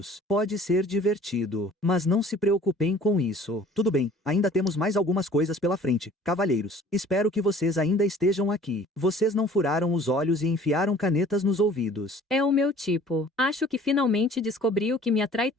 Pode ser divertido, mas não se preocupem com isso. Tudo bem, ainda temos mais algumas coisas pela frente, cavalheiros. Espero que vocês ainda estejam aqui. Vocês não furaram os olhos e enfiaram canetas nos ouvidos. É o meu tipo. Acho que finalmente descobri o que me atrai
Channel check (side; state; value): both; normal; correlation 0.50